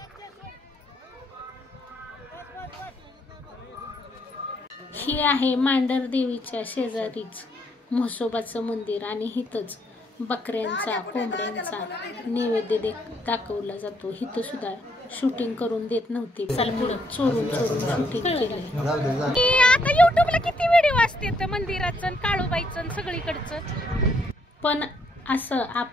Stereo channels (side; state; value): both; normal; correlation 0.72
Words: ही आहे मांढर देवीच्या शेजारीच म्हसोबाचं मंदिर आणि हिथंच बकऱ्यांचा कोंबड्यांचा नैवेद्य दाखवला जातो. हिथं सुद्धा शूटिंग करून देत नव्हते. चोरून चोरून शूटिंग केलंय. आता युट्यूबला किती व्हिडिओ असते मंदिराचं, काळूबाईचं, सगळीकडचं. पण असं